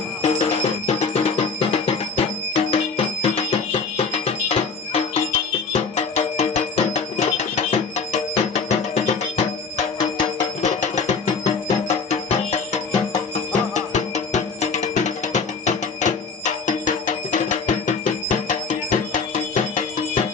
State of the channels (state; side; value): quieter; right; 5.0 dB